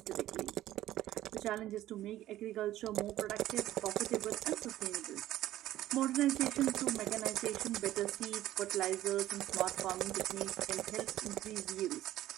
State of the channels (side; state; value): left; quieter; 14.1 dB